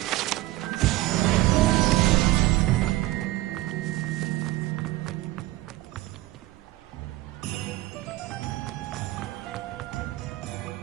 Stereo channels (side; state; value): left; quieter; 17.8 dB